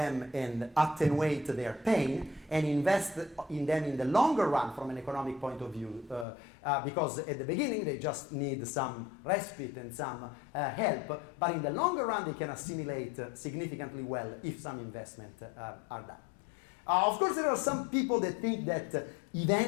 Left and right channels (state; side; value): drops out; right; at 6.2 s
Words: and attenuate their pain and invest in them in the longer run from an economic point of view. Because at the beginning, they just need some respite and some help. But in the longer run, they can assimilate significantly well if some investment are done. Of course, there are some people that think that